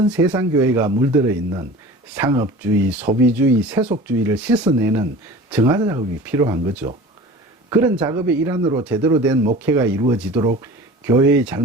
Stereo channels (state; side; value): normal; both; correlation 0.39